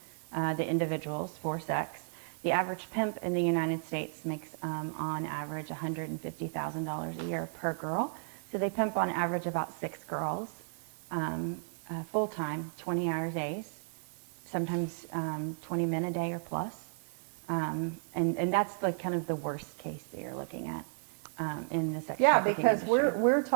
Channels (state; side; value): silent; left; 55 dB below the other